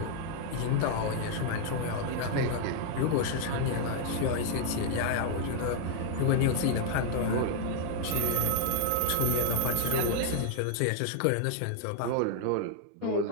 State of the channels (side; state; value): both; different; correlation 0.00